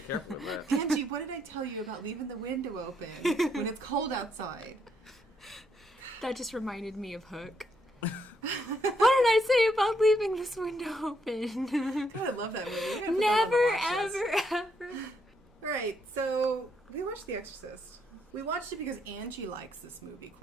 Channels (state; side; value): normal; both; correlation 0.75